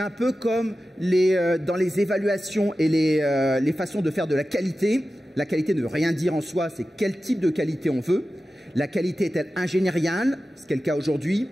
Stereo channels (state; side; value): normal; both; correlation 0.94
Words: un peu comme dans les évaluations et les façons de faire de la qualité. La qualité ne veut rien dire en soi, c'est quel type de qualité on veut. La qualité est-elle ingénieriale, ce qui est le cas aujourd'hui,